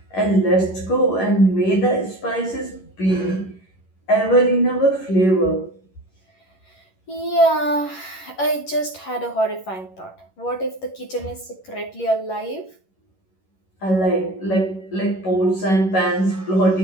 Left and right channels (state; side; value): late; right; 11 ms